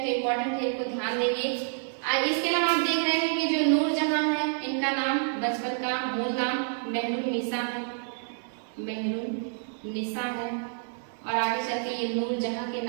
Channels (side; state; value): left; silent; digital silence